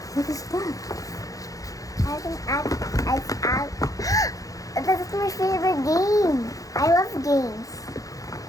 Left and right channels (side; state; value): right; late; 0.17 ms